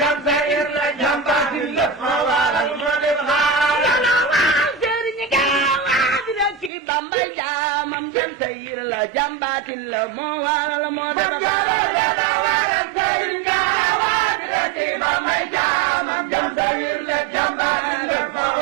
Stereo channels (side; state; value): left; drops out; at 6.7 s